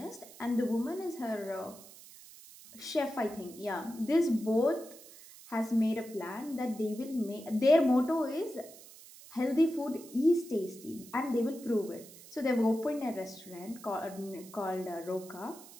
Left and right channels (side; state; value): right; noise; hiss, 19 dB below the sound